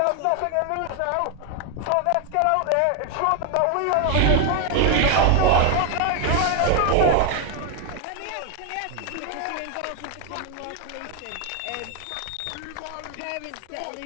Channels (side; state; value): both; different; correlation 0.01